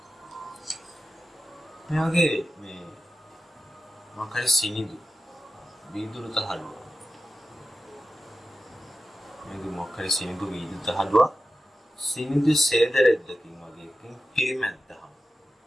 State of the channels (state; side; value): normal; both; correlation 0.93